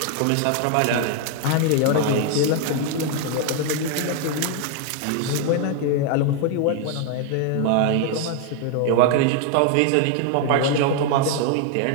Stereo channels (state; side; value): different; both; correlation 0.00